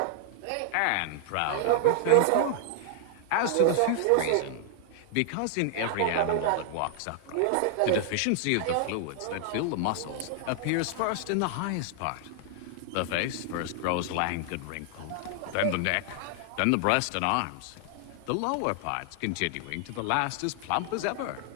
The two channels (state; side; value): different; both; correlation -0.01